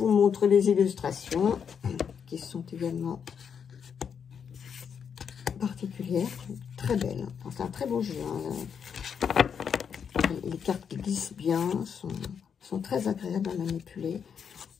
montre les illustrations qui sont également particulières, très belles. Enfin, c'est un très beau jeu. Hein. Les cartes qui glissent bien sont très agréables à manipuler.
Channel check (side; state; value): right; quieter; 7.2 dB